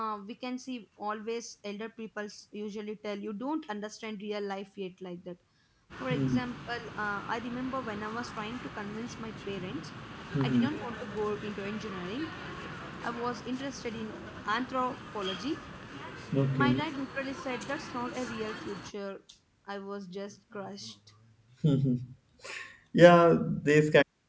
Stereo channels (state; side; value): identical; both; correlation 1.00